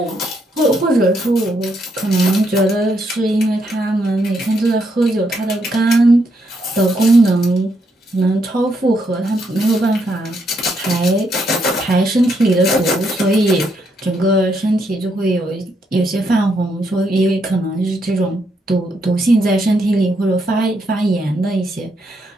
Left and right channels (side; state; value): both; normal; correlation 0.77